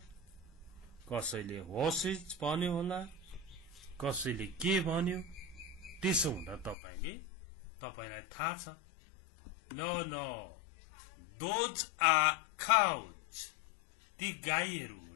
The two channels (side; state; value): right; drops out; at 6.8 s